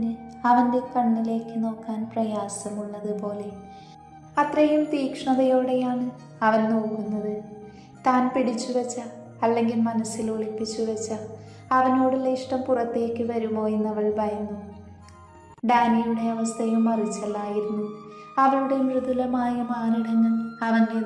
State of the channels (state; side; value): identical; both; correlation 1.00